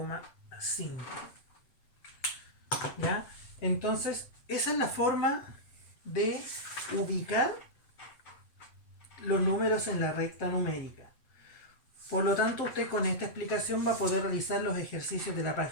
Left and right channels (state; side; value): late; right; 7.9 ms